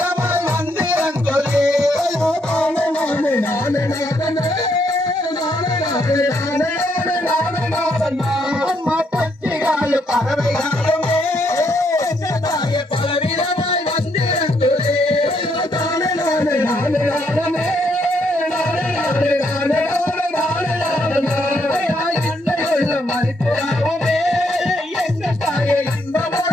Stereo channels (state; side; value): normal; both; correlation 0.74